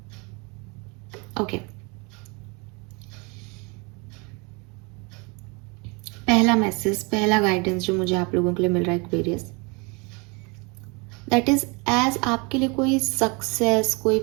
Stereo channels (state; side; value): quieter; left; 29.9 dB